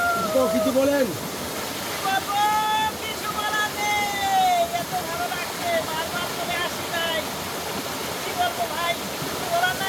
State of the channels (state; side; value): identical; both; correlation 1.00